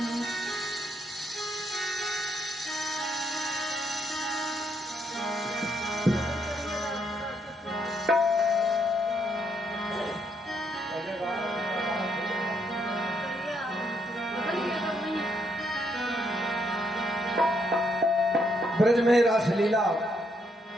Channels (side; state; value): both; normal; correlation 0.75